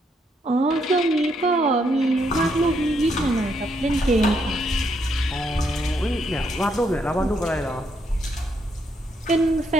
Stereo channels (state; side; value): normal; both; correlation 0.75